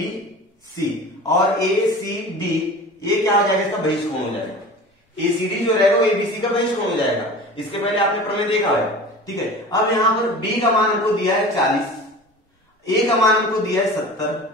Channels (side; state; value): both; normal; correlation 0.37